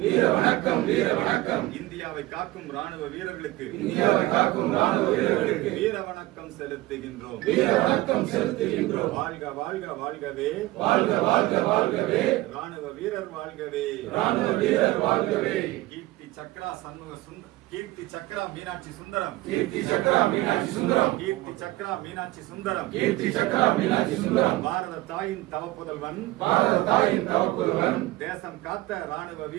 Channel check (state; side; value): quieter; left; 18.4 dB